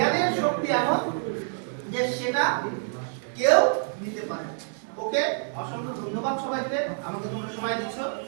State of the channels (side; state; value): left; silent; digital silence